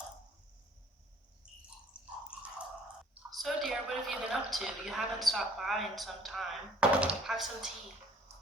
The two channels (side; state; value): both; normal; correlation 0.56